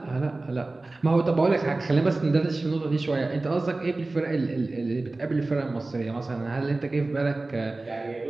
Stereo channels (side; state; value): left; quieter; 3.1 dB